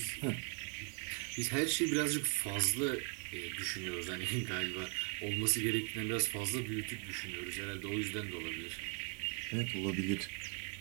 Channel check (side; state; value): left; quieter; 38.5 dB